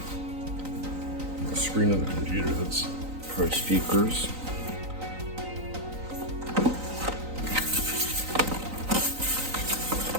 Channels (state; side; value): late; left; 3.9 ms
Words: The screen of the computer. That's Pro speakers.